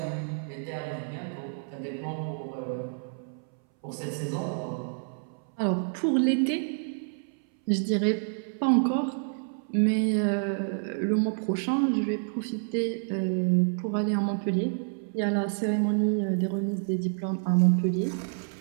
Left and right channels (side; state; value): left; silent; 59 dB below the other